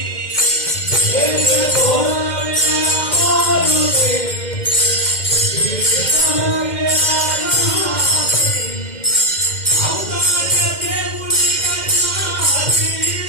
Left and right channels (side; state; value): right; late; 2.1 ms